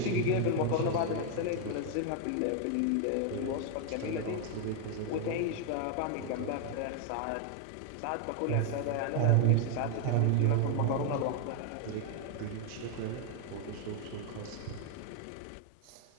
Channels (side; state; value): both; different; correlation 0.00